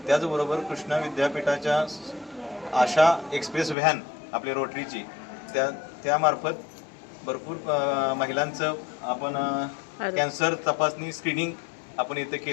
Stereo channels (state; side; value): drops out; right; at 3.8 s